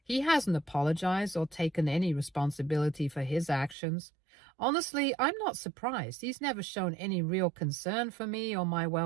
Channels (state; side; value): drops out; left; at 3.8 s